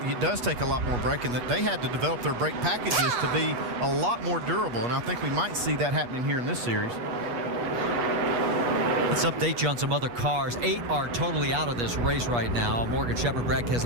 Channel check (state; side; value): late; left; 8.3 ms